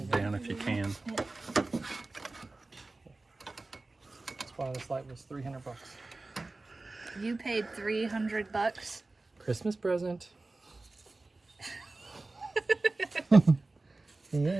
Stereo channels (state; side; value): quieter; left; 3.2 dB